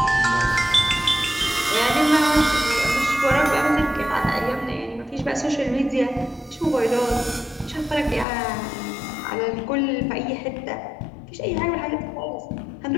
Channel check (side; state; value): right; drops out; at 8.2 s